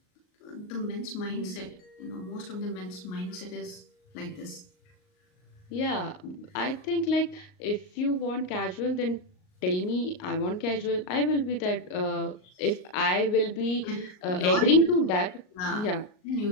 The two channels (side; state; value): right; late; 38 ms